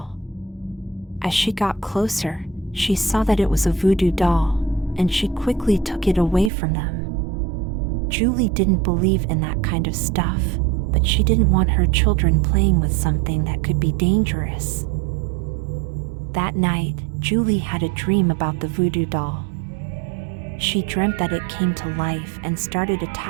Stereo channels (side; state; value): left; drops out; at 6.5 s